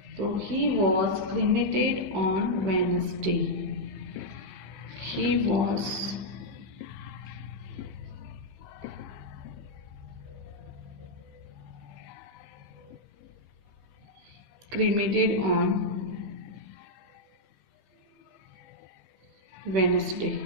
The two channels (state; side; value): late; left; 15 ms